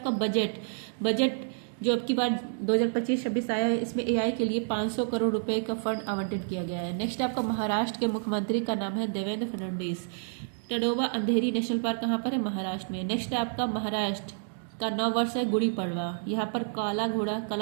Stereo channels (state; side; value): silent; left; digital silence